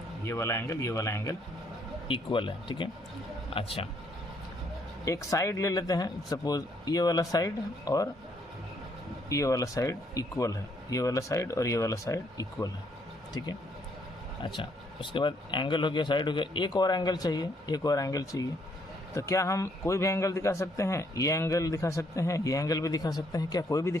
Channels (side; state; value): both; normal; correlation 0.69